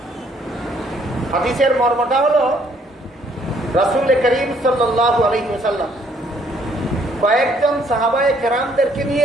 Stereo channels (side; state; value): both; normal; correlation 0.65